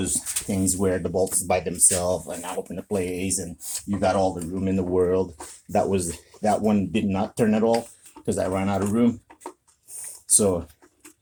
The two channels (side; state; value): both; identical; correlation 1.00